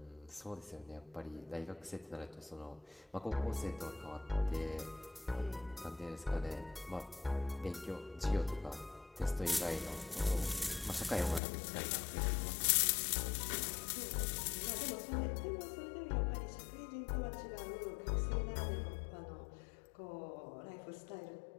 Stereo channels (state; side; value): drops out; right; at 11.4 s